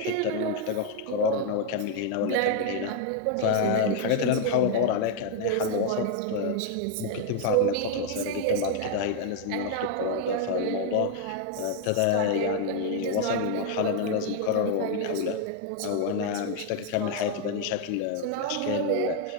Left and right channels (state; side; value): different; both; correlation 0.00